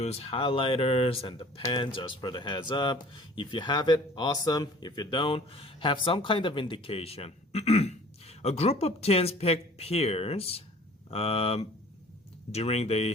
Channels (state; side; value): normal; both; correlation 0.49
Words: highlighters and the pen just for the heads up. If you have it, awesome. If you don't, have some kind of indication. A group of teens picked pairs during